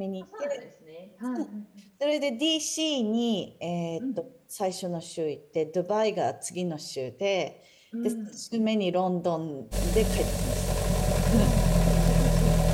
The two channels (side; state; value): both; identical; correlation 1.00